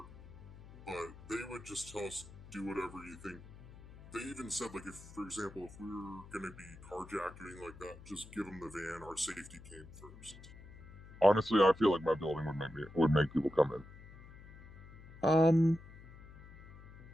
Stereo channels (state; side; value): noise; left; hum, 18 dB below the sound